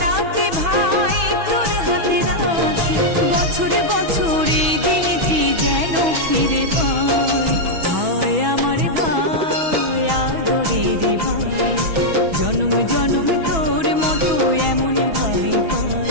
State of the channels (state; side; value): late; left; 6.1 ms